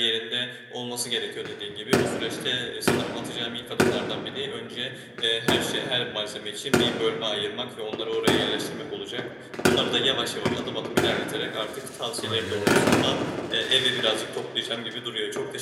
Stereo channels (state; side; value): identical; both; correlation 1.00